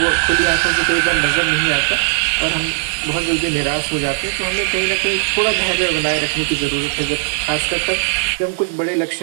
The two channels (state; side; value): silent; left; 66 dB below the other